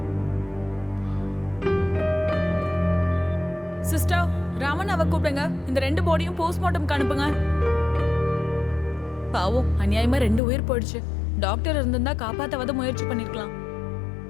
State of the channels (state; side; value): drops out; right; at 10.4 s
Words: சிஸ்டர், ராமன் அவ கூப்பிடுங்க. இந்த 2 பாடியும் போஸ்ட்மார்ட்டம்க்கு அனுப்புங்க. பாவம், அநியாயமா 2 உயிர் போயிடுச்சு. டாக்டர் இருந்திருந்தா காப்பாத்தவாத முயற்சி பண்ணிருக்கலாம்.